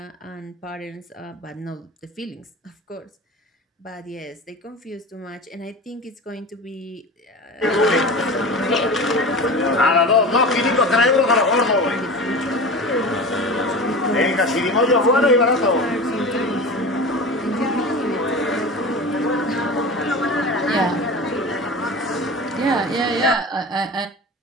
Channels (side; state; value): both; normal; correlation 0.31